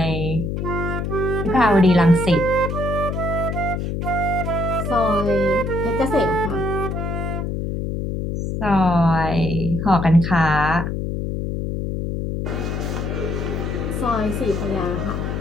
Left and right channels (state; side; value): noise; left; hum, 2 dB below the sound